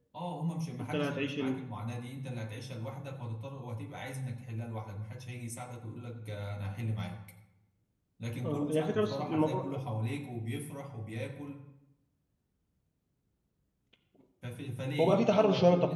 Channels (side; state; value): both; identical; correlation 1.00